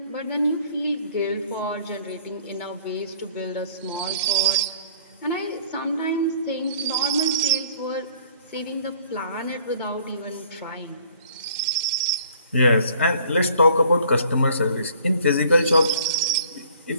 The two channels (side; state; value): both; inverted; correlation -0.55